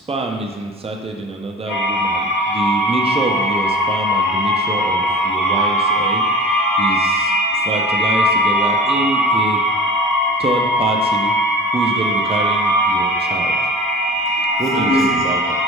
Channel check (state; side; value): normal; both; correlation 0.38